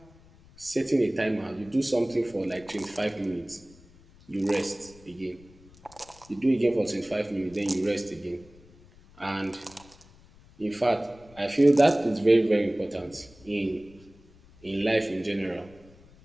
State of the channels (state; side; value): noise; left; rumble, 25 dB below the sound